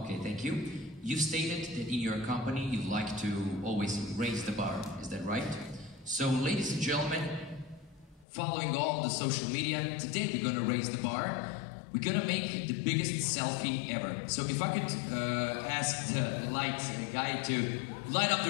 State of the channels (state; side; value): drops out; right; at 8.2 s